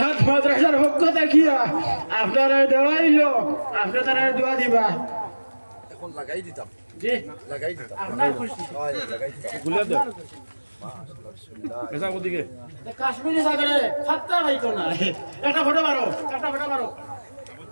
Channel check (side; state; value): both; inverted; correlation -1.00